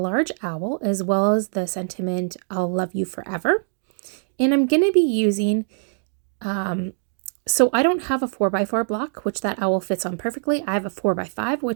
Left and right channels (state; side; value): silent; left; digital silence